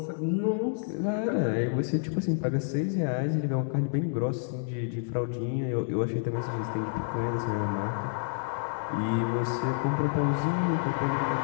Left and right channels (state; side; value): silent; right; digital silence